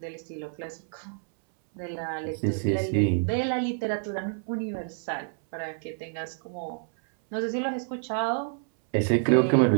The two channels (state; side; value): silent; left; 59 dB below the other